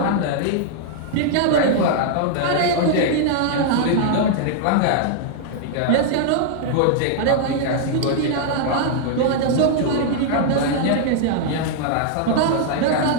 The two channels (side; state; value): both; different; correlation -0.01